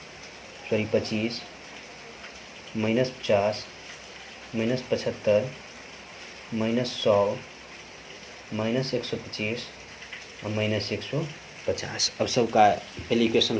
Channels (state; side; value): identical; both; correlation 1.00